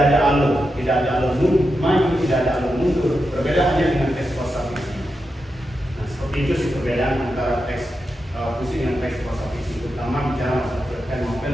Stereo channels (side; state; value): both; normal; correlation 0.88